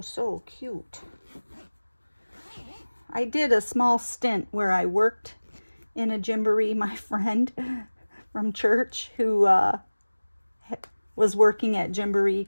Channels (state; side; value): inverted; both; correlation -1.00